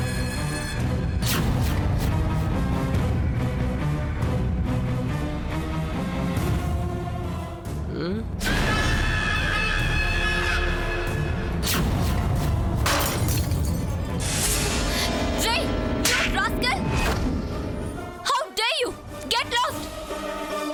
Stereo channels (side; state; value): both; identical; correlation 1.00